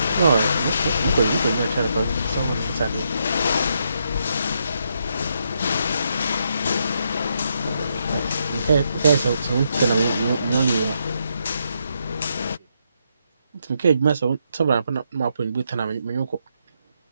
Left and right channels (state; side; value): inverted; both; correlation -0.79